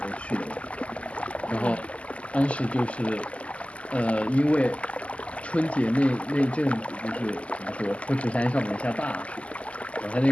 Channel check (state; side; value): late; right; 0.063 ms